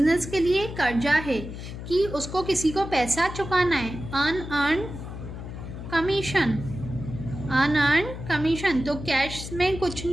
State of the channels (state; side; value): noise; left; hum, 9 dB below the sound